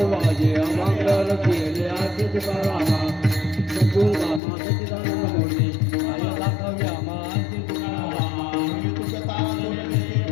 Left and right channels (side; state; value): right; drops out; at 4.4 s